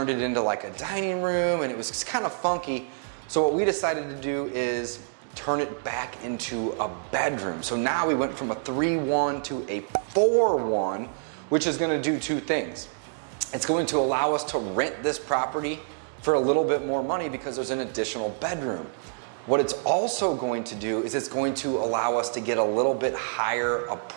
it into like a dining room, and it was just kind of funky. So what we decided to do is turn it back into a bedroom. So now we went from a 3-1 to a 4-1, which is going to do two things. It's going to allow us to rent this property for a little bit more money because there's an additional bedroom. What it's also going to do is it's going to allow us to get a little bit higher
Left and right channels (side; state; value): left; silent; digital silence